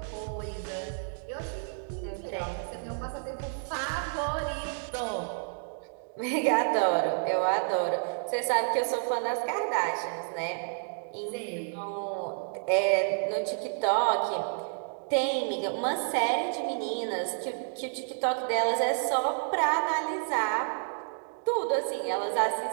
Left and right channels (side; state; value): left; silent; digital silence